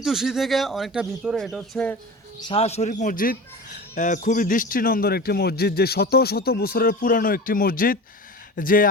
থেকে অনেকটা ভিতরে। এটা হচ্ছে শাহ শরীফ মসজিদ। খুবই দৃষ্টিনন্দন একটি মসজিদ, যে শত শত বছরের পুরানো একটি মসজিদ। যে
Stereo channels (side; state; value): both; normal; correlation 0.32